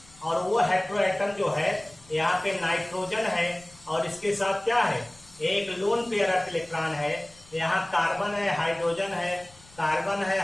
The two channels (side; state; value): left; noise; rumble, 25 dB below the sound